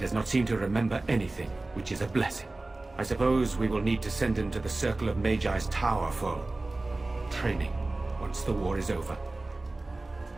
not seem to remember anything, which is a blessing. I suppose we will need to send him to the Circle of Magi's tower for training once the war is over.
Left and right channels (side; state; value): left; quieter; 3.0 dB